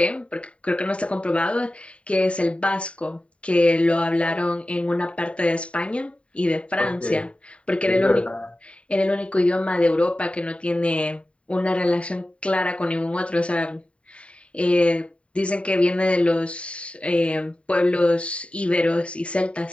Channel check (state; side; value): late; right; 0.061 ms